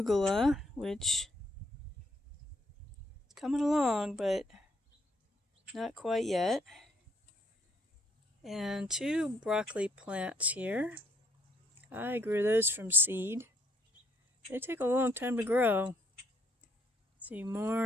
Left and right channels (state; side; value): normal; both; correlation 0.69